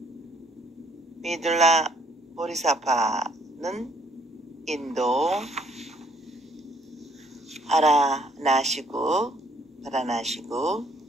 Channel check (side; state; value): both; normal; correlation 0.65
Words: 미둘라 보리사파는 인도 바라나시구